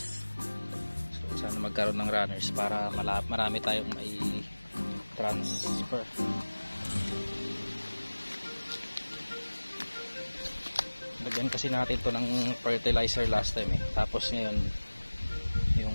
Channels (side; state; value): both; inverted; correlation -1.00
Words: So sana magkaroon ng runners para marami tayong may transfer. Lagyan kasi natin to ng fertilizer last time eh. Tapos ngayon